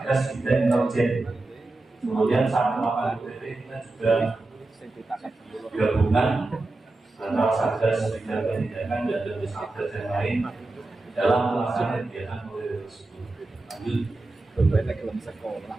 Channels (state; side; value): quieter; left; 3.0 dB